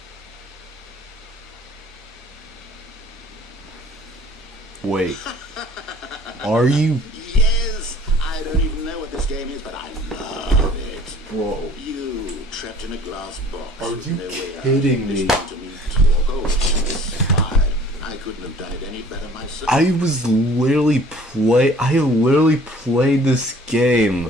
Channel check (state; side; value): normal; both; correlation 0.51